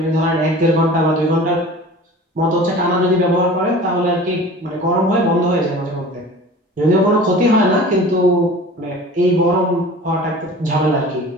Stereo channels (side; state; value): both; normal; correlation 0.41